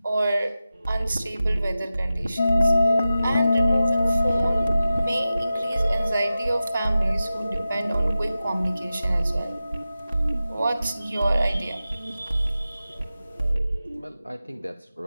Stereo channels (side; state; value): both; inverted; correlation -0.93